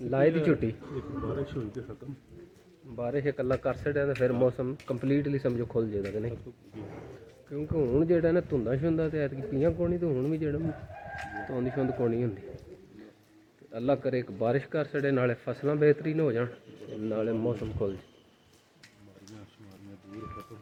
लाई दी छुट्टी? बारिश हुई तो खत्म, बारिश कला कर छड़िया तो फिर मौसम कंप्लीटली समझो खुल जाएगा कि नहीं, क्योंकि हूँ जो ना धुंदा शुंदा तो ऐतकी पियाँ कोनी, तो हूँ भी जो धुंद शुंद कोनी होंगी। अल्लाह करे एक बारिश कर छड़े, नाले फसलां बेहतरीन हो जान, नाले मौसम खुल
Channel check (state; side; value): identical; both; correlation 1.00